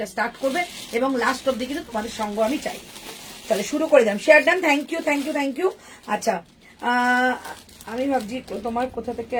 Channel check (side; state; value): both; identical; correlation 1.00